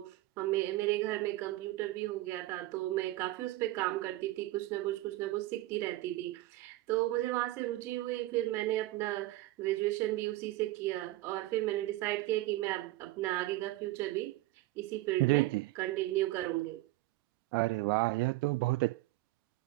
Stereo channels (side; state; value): left; quieter; 17.7 dB